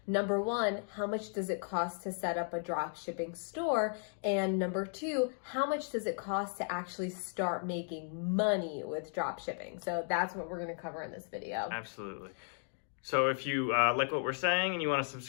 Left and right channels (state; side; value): silent; right; 54 dB below the other